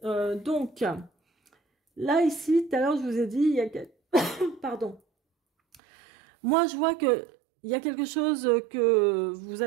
donc, là, ici, tout à l'heure, je vous ai dit, il y a... Pardon. Moi, je vois que il y a quelque chose que vous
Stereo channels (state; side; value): drops out; left; at 5.8 s